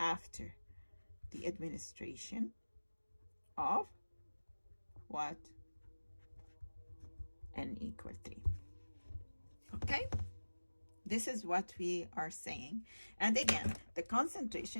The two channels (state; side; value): inverted; both; correlation -1.00